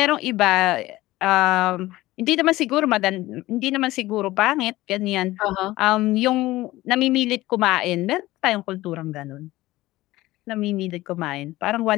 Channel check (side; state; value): right; quieter; 17.6 dB